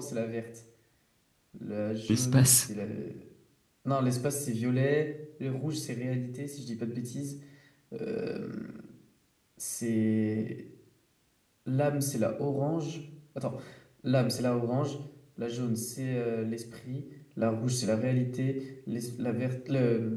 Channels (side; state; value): both; identical; correlation 1.00